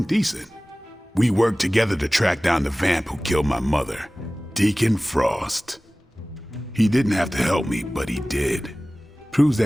decent. We worked together to track down the vamp who killed my mother, Deacon Frost. He didn't have to help me, but he did. Proves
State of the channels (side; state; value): both; normal; correlation 0.98